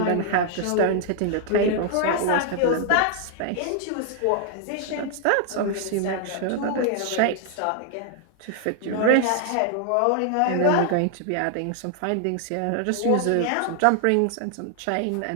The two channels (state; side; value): different; both; correlation 0.00